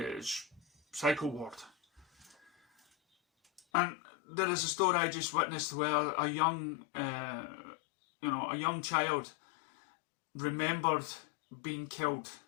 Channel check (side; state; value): right; drops out; at 3.6 s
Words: psycho ward. And there is a story I just witnessed where a young child remembered being killed